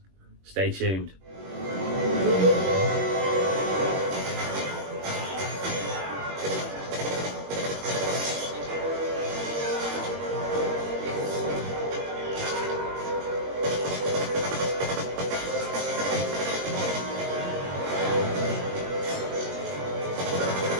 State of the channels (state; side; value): late; left; 21 ms